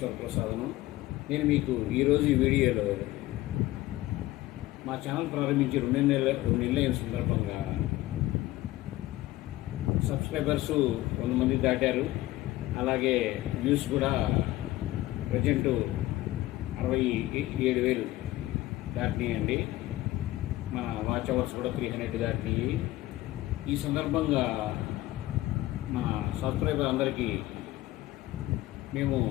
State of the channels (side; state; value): right; quieter; 16.8 dB